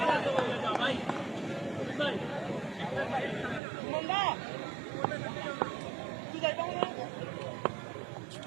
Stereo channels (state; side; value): drops out; left; at 3.6 s